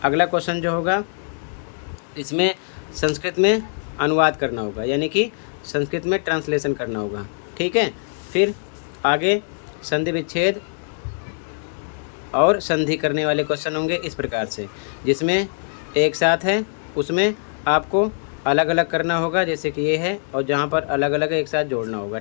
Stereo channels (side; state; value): right; silent; digital silence